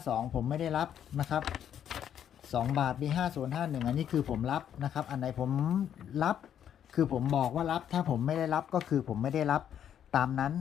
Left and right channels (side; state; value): right; quieter; 9.5 dB